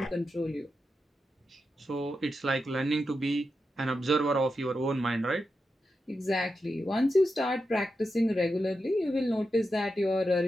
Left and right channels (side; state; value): both; normal; correlation 0.88